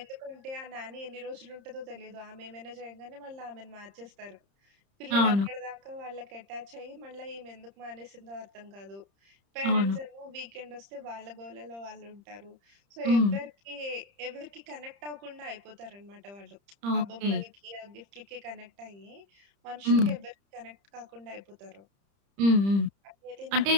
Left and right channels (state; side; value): late; left; 30 ms